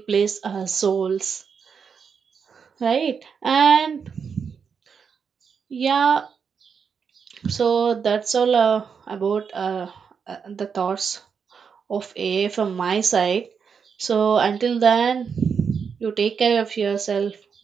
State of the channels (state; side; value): quieter; left; 6.3 dB